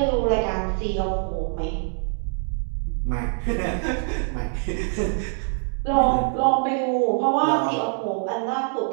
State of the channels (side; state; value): left; silent; 58 dB below the other